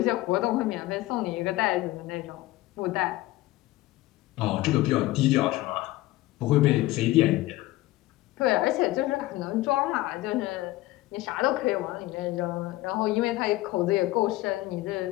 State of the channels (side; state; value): right; quieter; 17.8 dB